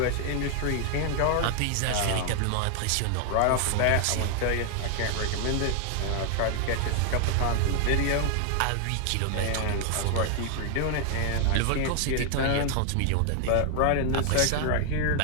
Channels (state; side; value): different; both; correlation 0.00